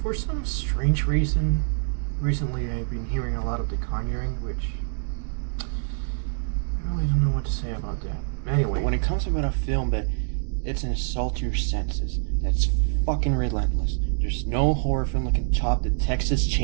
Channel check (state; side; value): silent; left; digital silence